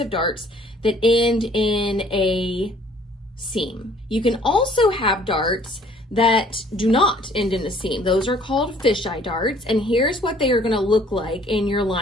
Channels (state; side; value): normal; both; correlation 0.58